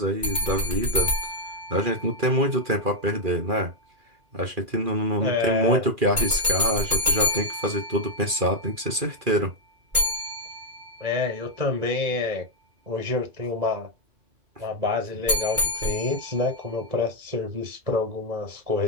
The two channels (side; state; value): left; late; 2.4 ms